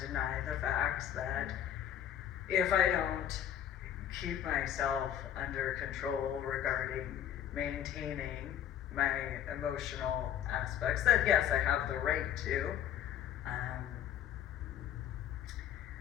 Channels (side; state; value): right; quieter; 10.2 dB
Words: the facts that if I don't keep myself under control regarding maintaining my emotional aspects that, yes, I have the right to.